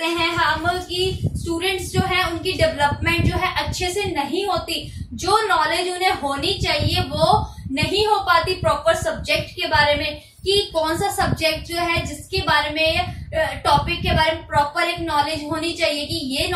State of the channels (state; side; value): identical; both; correlation 1.00